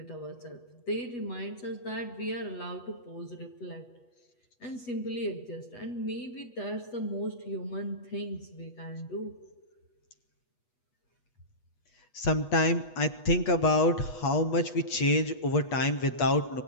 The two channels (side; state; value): right; late; 8.2 ms